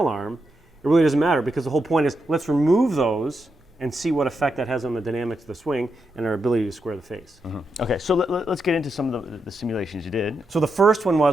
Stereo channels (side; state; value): both; normal; correlation 0.84